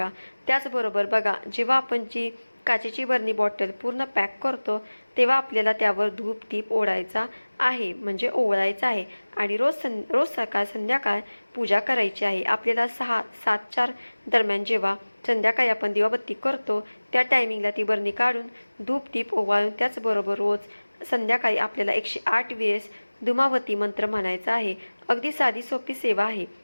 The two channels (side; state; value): both; inverted; correlation -1.00